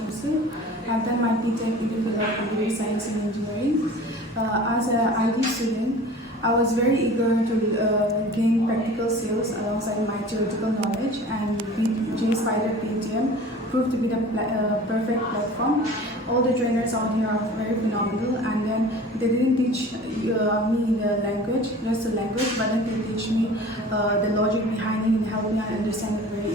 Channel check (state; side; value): normal; both; correlation 0.42